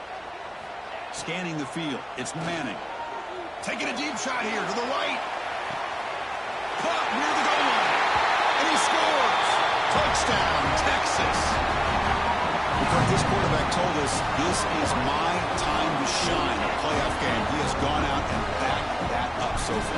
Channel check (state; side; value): identical; both; correlation 1.00